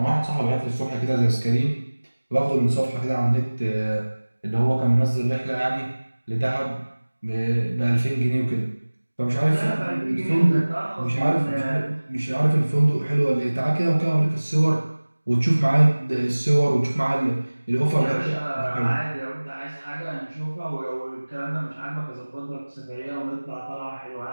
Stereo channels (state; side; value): inverted; both; correlation -1.00